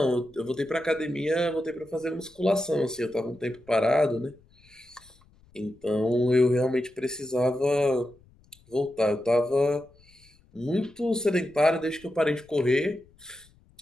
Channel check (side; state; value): left; noise; rumble, 29 dB below the sound